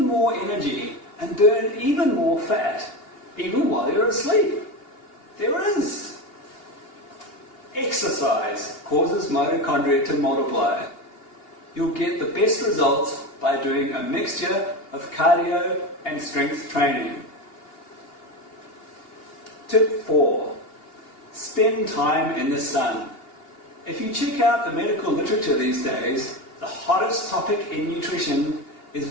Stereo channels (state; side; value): late; right; 2.8 ms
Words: more energy and burn even more fat, even while you're asleep? There is. Exercise causes mitochondria to multiply. You'll get the best results by doing a mixture of cardio and strength training. Tip 4. Spend time in the sun. If you check out the medical literature these days, the hottest topic in nutrition is